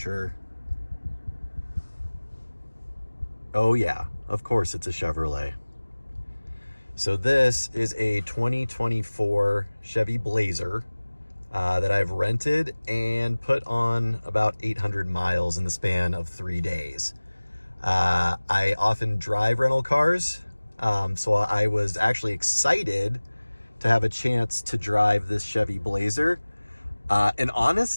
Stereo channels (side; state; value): both; inverted; correlation -1.00